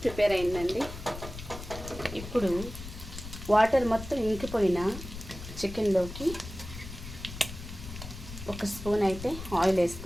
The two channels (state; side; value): noise; left; rumble, 11 dB below the sound